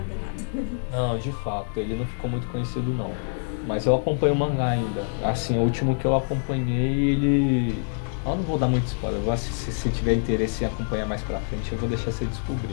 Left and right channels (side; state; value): right; silent; digital silence